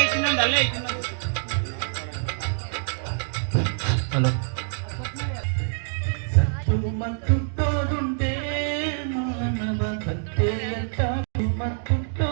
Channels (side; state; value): left; silent; digital silence